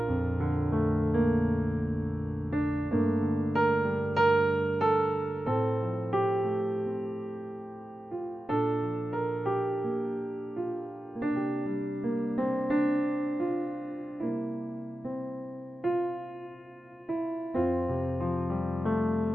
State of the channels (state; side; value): normal; both; correlation 0.93